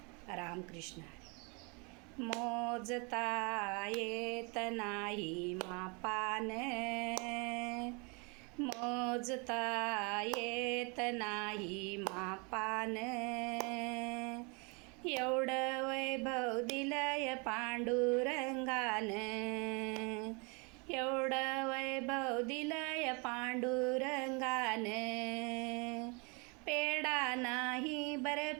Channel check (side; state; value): left; quieter; 31.6 dB